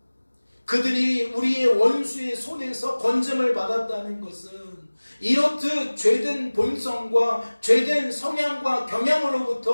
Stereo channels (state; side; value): inverted; both; correlation -1.00